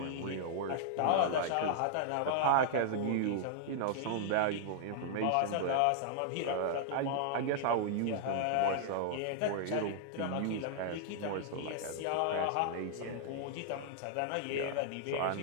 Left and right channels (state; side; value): different; both; correlation -0.01